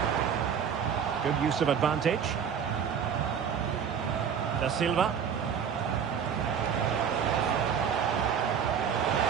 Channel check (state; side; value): quieter; left; 7.6 dB